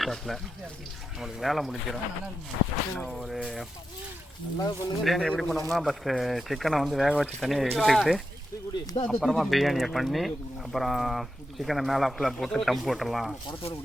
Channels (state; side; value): normal; both; correlation 0.88